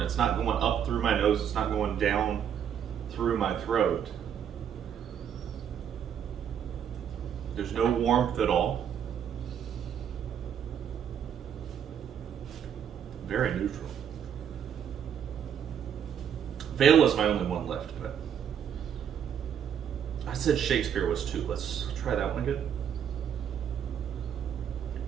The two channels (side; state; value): left; quieter; 8.6 dB